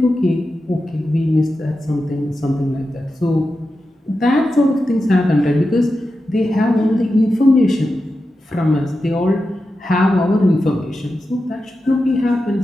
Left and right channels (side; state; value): both; normal; correlation 0.91